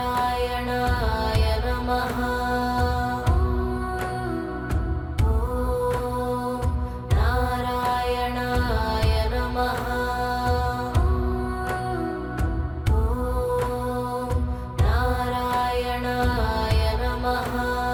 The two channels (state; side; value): identical; both; correlation 1.00